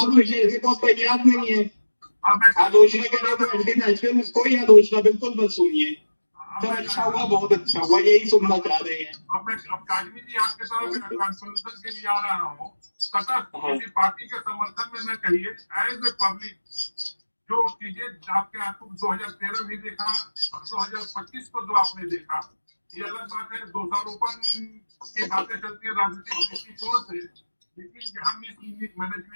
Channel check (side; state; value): both; inverted; correlation -1.00